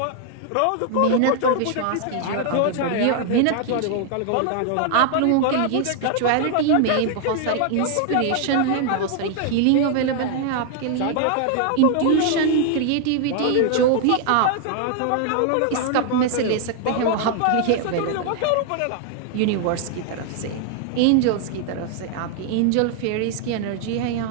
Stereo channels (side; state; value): both; different; correlation 0.00